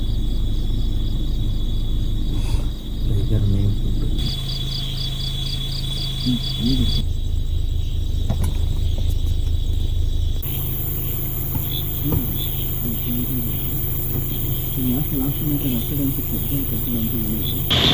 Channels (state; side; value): identical; both; correlation 1.00